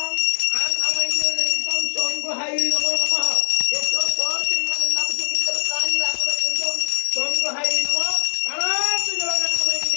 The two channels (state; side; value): silent; right; digital silence